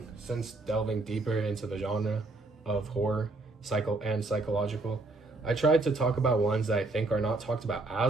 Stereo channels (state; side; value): quieter; left; 3.1 dB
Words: since delving deeper into the genre of horror, psychological. I tried to talk about ones that I think are not talked about